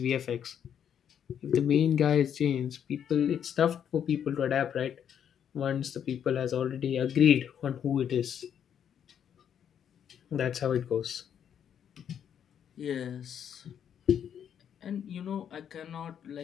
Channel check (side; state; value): right; quieter; 8.8 dB